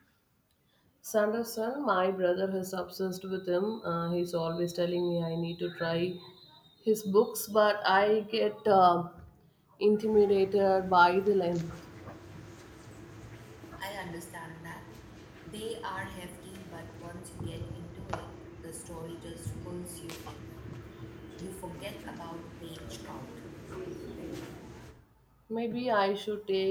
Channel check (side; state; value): both; identical; correlation 1.00